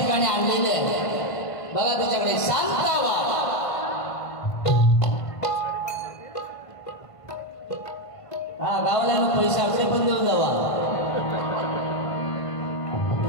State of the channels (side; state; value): right; late; 1.5 ms